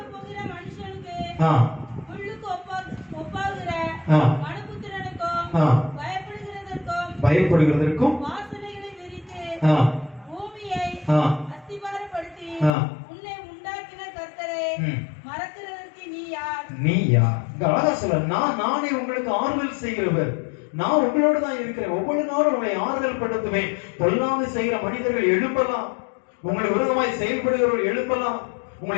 பயப்படுகிறதற்கும் நீ யார்? அழகா சொல்ல, நானே உங்களுக்கு ஆறுதல் செய்கிறவர், நான் உங்களோட தான் இருக்கிறேன். ஒவ்வொரு நாளும் உங்களை ஆறுதல் படுத்துவேன். பொல்லாங்கு செய்கிற மனிதர்கள் எழுப்பலாம், உங்களை விரோதமாய் செயல்படுகிறவர்கள் எழுப்பலாம், உங்களை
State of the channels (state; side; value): drops out; right; at 12.8 s